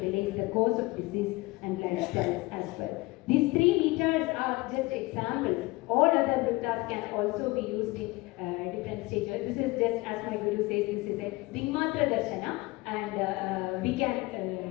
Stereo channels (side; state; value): right; quieter; 22.5 dB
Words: the cause of disease and lifestyles as well. These 3 meters are just examples. All other vritas can also be used in different stages. This is just, as my Guru says, this is a Dingmatra Darshana, and we can